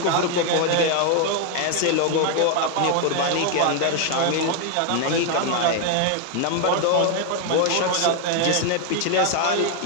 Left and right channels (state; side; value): different; both; correlation 0.00